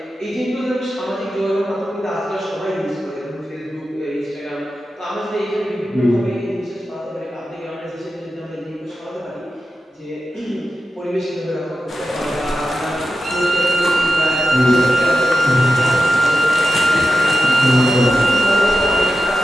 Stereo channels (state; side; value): normal; both; correlation 0.91